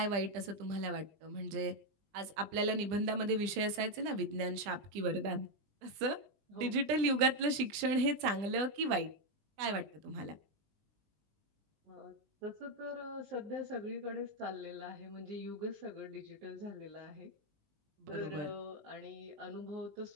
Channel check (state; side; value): late; left; 20 ms